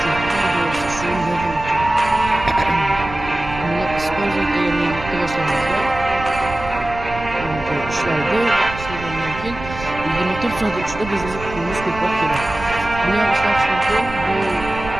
bo'lsa shu level uchun. Buni использовать deganni boshlamizda ishlaydi. Ishlangandan keyin 24 soat ichida bizga pulimiz ko'proq keladi. Buni ham ishlatish mumkin. Bu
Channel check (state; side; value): noise; right; rumble, 11 dB below the sound